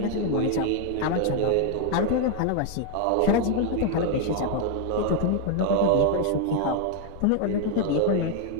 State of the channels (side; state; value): both; different; correlation 0.00